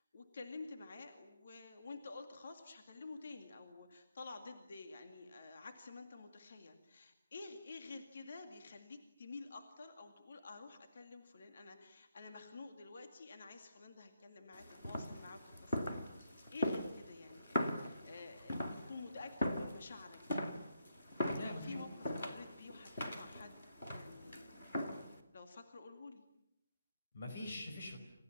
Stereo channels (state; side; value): inverted; both; correlation -0.78